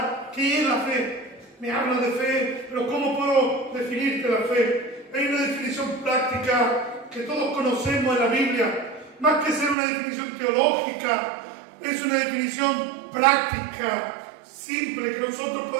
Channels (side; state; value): left; drops out; at 9.8 s